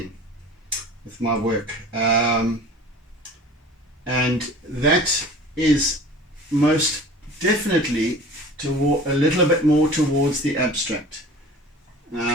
with my work, and that is most definitely a little bit more towards the abstract.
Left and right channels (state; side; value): normal; both; correlation 0.42